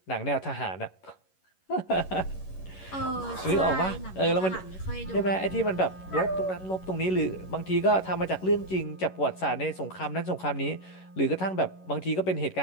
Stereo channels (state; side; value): late; right; 11 ms